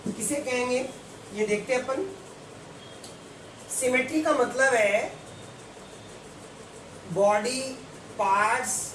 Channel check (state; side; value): identical; both; correlation 1.00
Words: किसे कहेंगे, ये देखते हैं अपन। सिमेट्री का मतलब है body parts